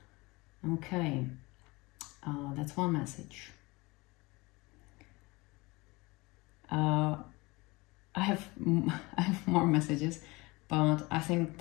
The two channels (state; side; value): quieter; right; 23.6 dB